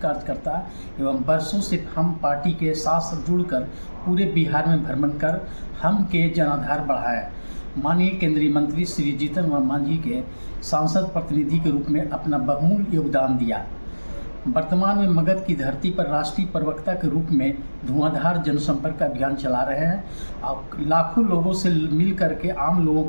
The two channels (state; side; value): inverted; both; correlation -1.00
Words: कार्यकर्ता एवं वर्षों से हम पार्टी के साथ जुड़कर पूरे बिहार में भ्रमण कर हम के जनाधार बढ़ाया। माननीय केंद्रीय मंत्री श्री जीतन राम मांझी के सांसद प्रतिनिधि के रूप में अपना बहुमूल्य योगदान दिया। वर्तमान में मगध की धरती पर राष्ट्रीय प्रवक्ता के रूप में धुआंधार जनसंपर्क अभियान चला रहे हैं और लाखों लोगों से मिल करके आम लोगों